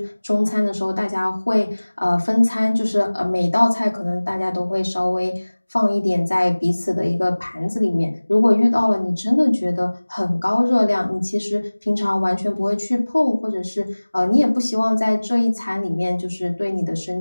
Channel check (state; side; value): inverted; both; correlation -1.00